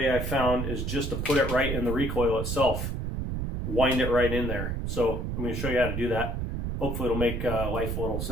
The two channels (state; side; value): noise; right; rumble, 2 dB below the sound